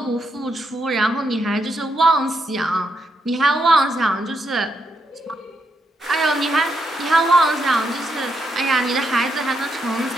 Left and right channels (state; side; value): normal; both; correlation 0.80